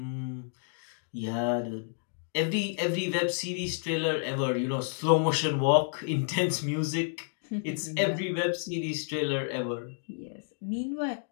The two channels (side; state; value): right; silent; digital silence